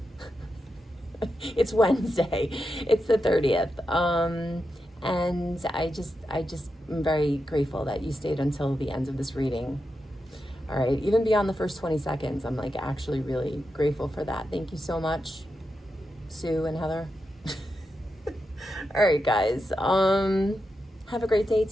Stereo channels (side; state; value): both; normal; correlation 0.87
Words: It's Wednesday. It's the 30th. And I just am very grateful that you stayed until the end of this reading. All right, even beyond the first 20 seconds, I'm like actually really grateful for that. Thank you so much, Sue and Heather. All right, guys. Have a great day.